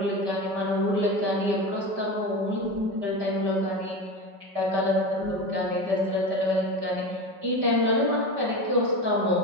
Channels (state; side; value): late; left; 5.0 ms